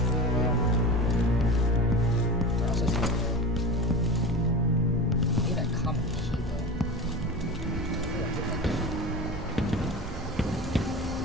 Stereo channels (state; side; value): normal; both; correlation 0.29